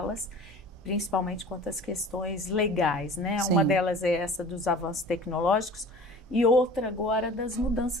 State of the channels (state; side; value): normal; both; correlation 0.42